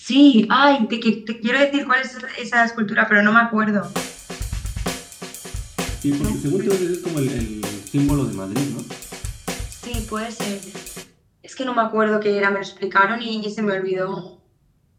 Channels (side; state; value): both; identical; correlation 1.00